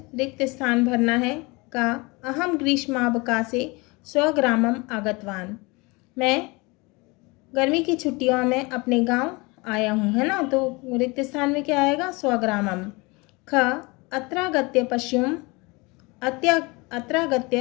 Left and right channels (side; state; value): right; quieter; 25.9 dB